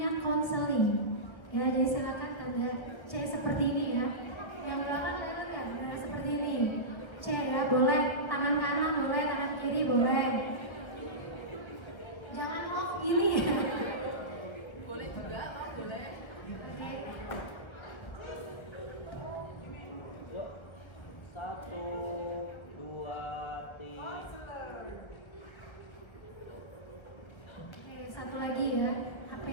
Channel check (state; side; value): late; right; 1.1 ms